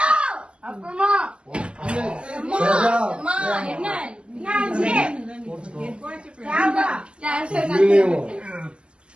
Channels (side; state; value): left; late; 0.057 ms